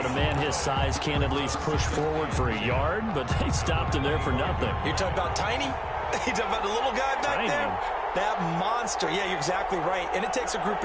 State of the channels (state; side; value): identical; both; correlation 1.00